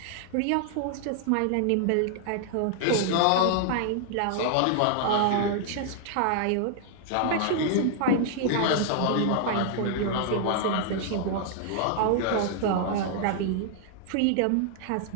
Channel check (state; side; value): different; both; correlation 0.00